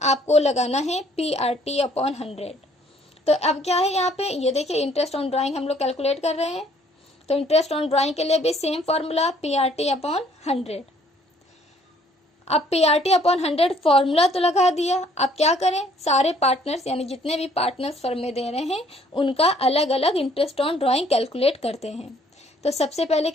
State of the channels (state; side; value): normal; both; correlation 0.61